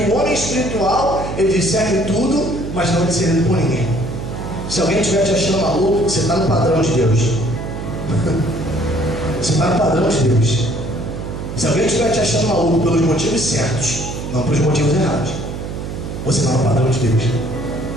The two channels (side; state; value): right; noise; hum, 7 dB below the sound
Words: homem espiritual, ele discerne tudo, mas não é discernido por ninguém. Se alguém estiver te achando maluco, você está no padrão de Deus. Você está no padrão de Deus. Se alguém estiver te achando maluco pelos motivos certos, não pelos motivos errados, você está no padrão de Deus.